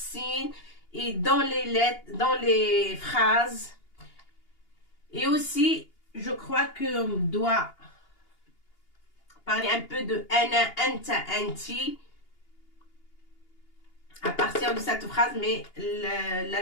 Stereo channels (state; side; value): late; right; 2.8 ms